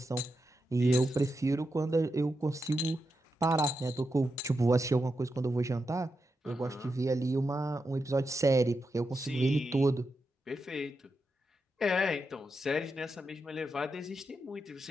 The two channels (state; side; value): normal; both; correlation 0.87